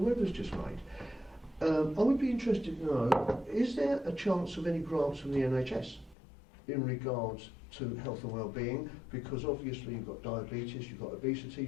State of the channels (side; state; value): right; drops out; at 6.2 s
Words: Webber's just made, I would be interested to know, is there a chance of any grants from the NHS in regards to health and well-being? Because obviously you've got diabetes, you've got obesity,